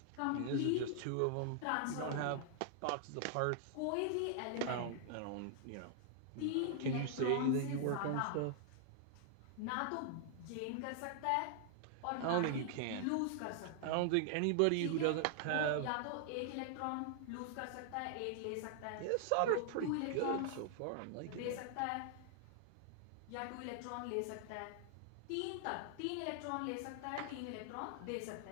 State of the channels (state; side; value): different; both; correlation 0.00